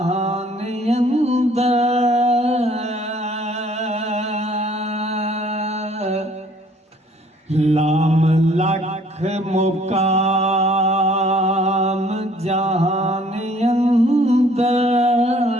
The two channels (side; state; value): both; normal; correlation 0.58